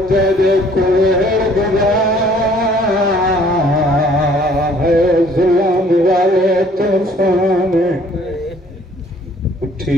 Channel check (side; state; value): both; normal; correlation 0.58